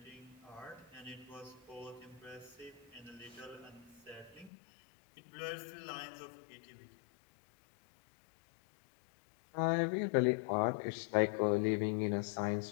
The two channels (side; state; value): right; drops out; at 4.5 s